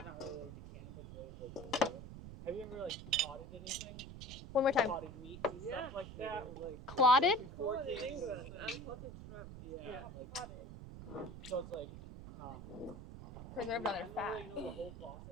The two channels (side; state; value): right; noise; rumble, 11 dB below the sound